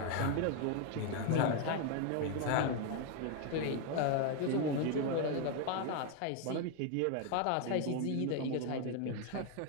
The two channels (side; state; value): both; different; correlation 0.01